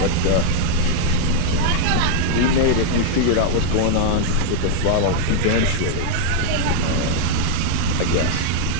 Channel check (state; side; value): different; both; correlation -0.01